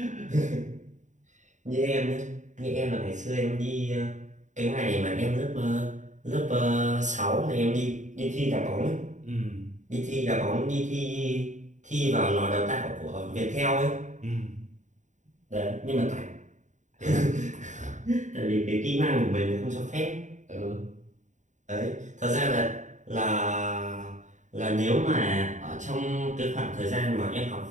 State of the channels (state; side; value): late; left; 0.35 ms